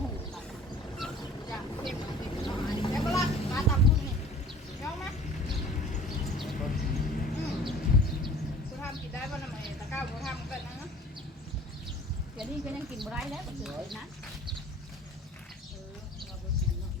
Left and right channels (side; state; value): both; normal; correlation 0.47